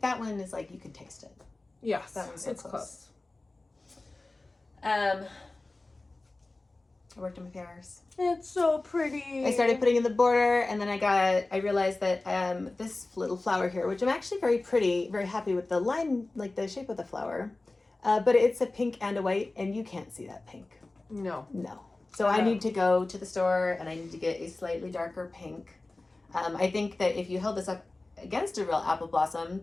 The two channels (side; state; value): right; quieter; 3.1 dB